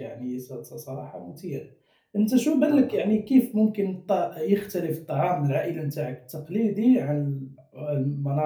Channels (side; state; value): both; identical; correlation 1.00